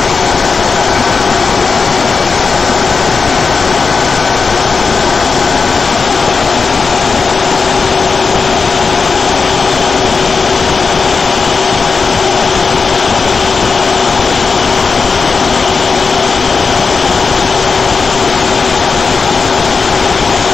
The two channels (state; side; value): quieter; right; 4.8 dB